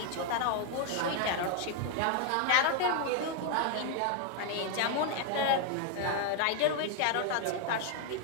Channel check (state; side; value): different; both; correlation 0.00